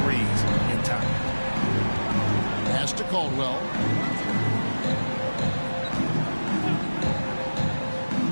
in time. Pass to Caldwell.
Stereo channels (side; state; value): both; inverted; correlation -1.00